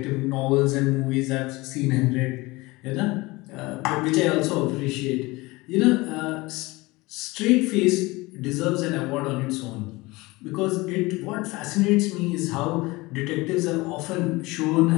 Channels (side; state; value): right; quieter; 22.2 dB